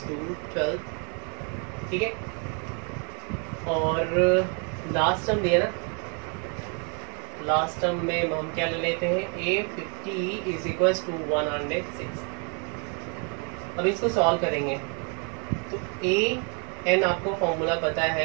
to 12, ठीक है, और लास्ट टर्म दिया ना, लास्ट टर्म में हम क्या ले लेते हैं ए 50 इज इक्वल टू 106। अब इसको सॉल्व करेंगे तो ए एन आपको फॉर्मूला पता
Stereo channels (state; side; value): quieter; left; 35.2 dB